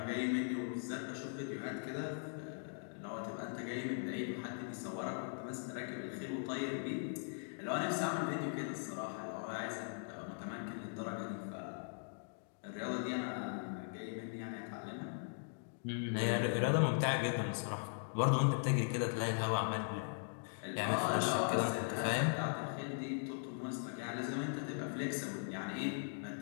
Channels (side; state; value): right; silent; digital silence